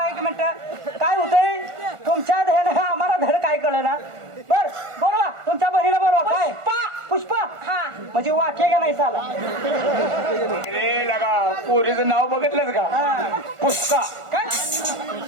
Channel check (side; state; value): left; late; 1.4 ms